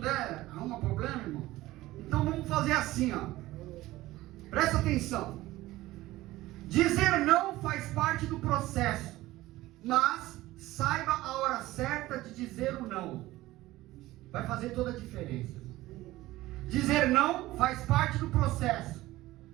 arruma problema, irmão. Então vamos fazer assim, ó. Presta atenção. Dizer não faz parte do processo, mas saiba a hora certa de dizer o não. Vai fazer toda a diferença. Dizer não faz parte do processo,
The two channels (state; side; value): quieter; left; 17.3 dB